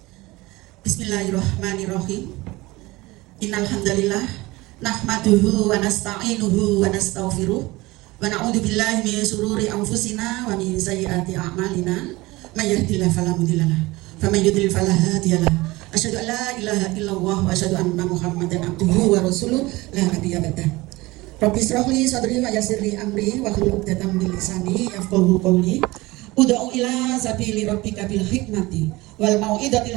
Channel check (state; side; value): quieter; left; 21.0 dB